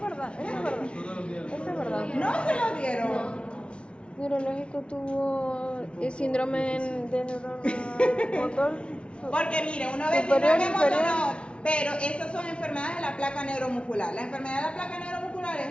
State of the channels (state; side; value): late; right; 0.058 ms